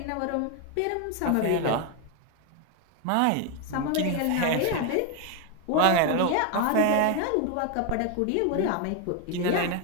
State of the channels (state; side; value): different; both; correlation 0.01